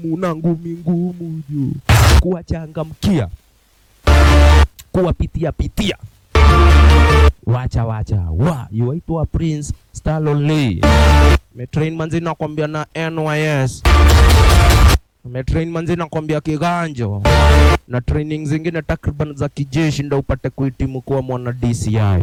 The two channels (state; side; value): identical; both; correlation 1.00